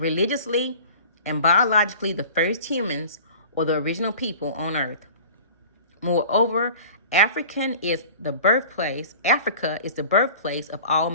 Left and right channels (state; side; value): inverted; both; correlation -0.42